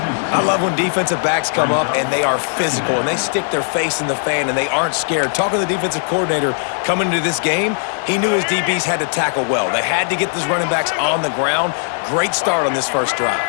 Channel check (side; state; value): right; silent; 62 dB below the other